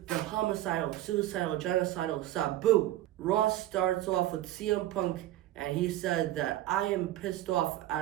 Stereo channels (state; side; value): quieter; left; 14.3 dB